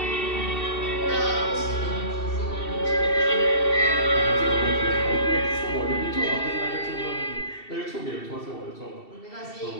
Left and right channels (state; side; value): late; right; 2.7 ms